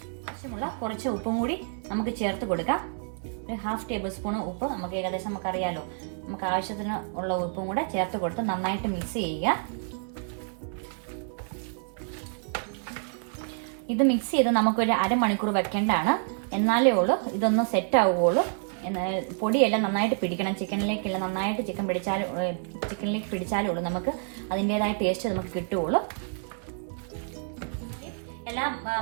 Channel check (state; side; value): silent; left; 59 dB below the other